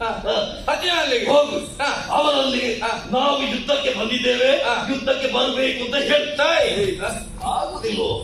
ಅರ್ಜುನನಲ್ಲಿಗೆ ಹೋಗು. ಅವನಲ್ಲಿ ನಾವು ಯುದ್ಧಕ್ಕೆ ಬಂದಿದ್ದೇವೆ, ಯುದ್ಧಕ್ಕೆ ಬರಬೇಕು ಅಂತ ಹೇಳ್ತಾ ಆಗುದಿಲ್ವೋ?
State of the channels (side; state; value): both; identical; correlation 1.00